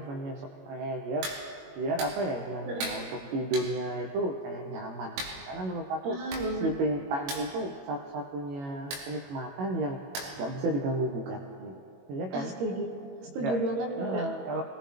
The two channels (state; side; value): late; left; 22 ms